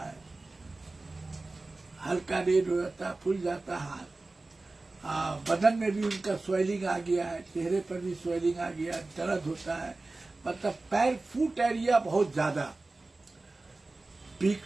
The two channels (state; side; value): quieter; left; 3.2 dB